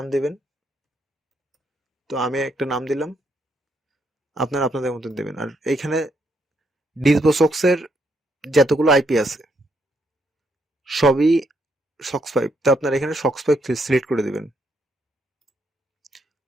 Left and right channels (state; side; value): normal; both; correlation 0.76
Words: দিবেন। তো আমি একটা নাম দিলাম, আপনারা আপনাদের মতন দেবেন। আর এইখানে ডিসভোসক্সের যতগুলো আইপি আছে সবই সক্স 5। তো আপনারা এখানে সক্স 5 সিলেক্ট করে দিবেন।